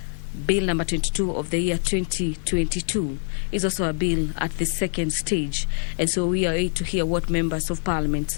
Bill number 22 of the year 2022, is also a bill at the second stage. And so we are able to hear what members of Parliament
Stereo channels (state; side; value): silent; right; digital silence